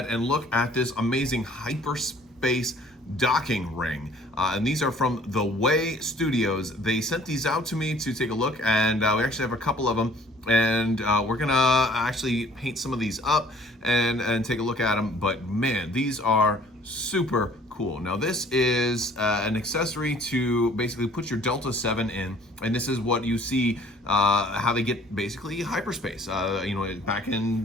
and look at this amazing Hyperspace docking ring. And these are from TheWayDesignStudio. They sent these out to me to take a look, and we actually have a couple of them. And we're gonna actually paint some of these up and take a look at them. But man, these are super cool. Now this is an accessory to basically put your Delta 7 in, and this is what you see how they get basically hyperspace. Back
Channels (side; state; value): both; normal; correlation 0.55